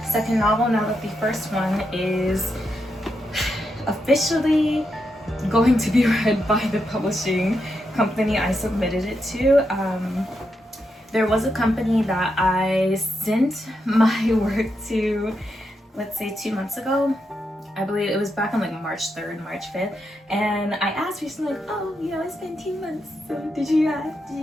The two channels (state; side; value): normal; both; correlation 0.84